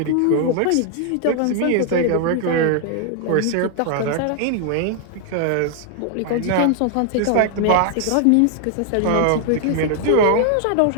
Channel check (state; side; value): different; both; correlation 0.00